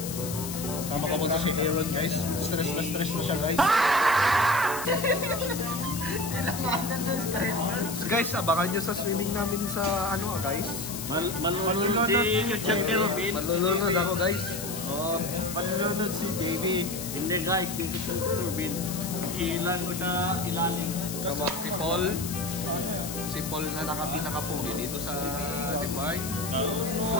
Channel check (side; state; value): left; noise; hiss, 8 dB below the sound